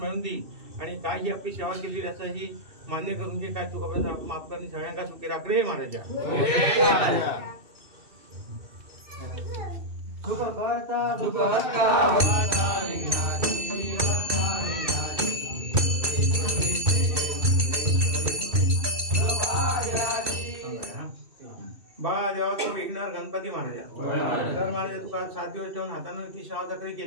दी. आणि काय ही आपली सेवा केली असं ही मान्य करून घे. काय तू कपडा माफ करणे सगळ्यांना सुखी राख रे महाराजा. जेव्हा तू विघ्नहर गणपती महाराजा तर महाराजा तुका 7 दिवस ठेवून हातानं ती शावजागरी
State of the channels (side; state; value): left; late; 2.6 ms